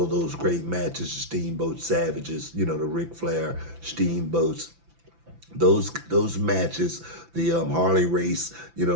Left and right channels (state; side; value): late; left; 5.9 ms